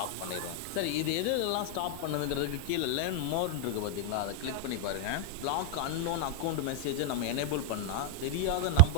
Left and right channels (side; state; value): both; different; correlation 0.00